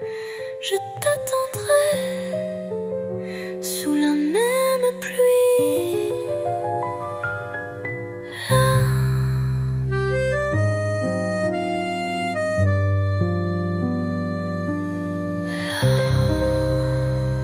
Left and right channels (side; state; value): both; identical; correlation 1.00